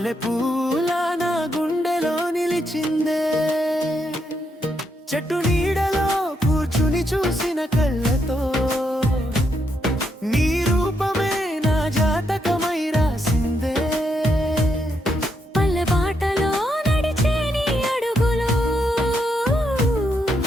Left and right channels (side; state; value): both; normal; correlation 0.79